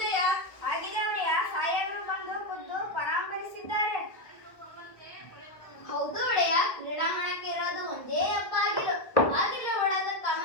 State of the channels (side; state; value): right; late; 1.4 ms